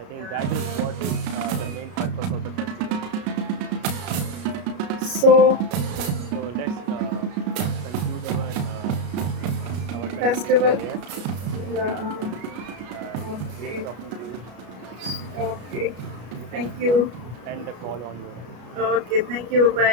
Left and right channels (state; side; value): late; left; 33 ms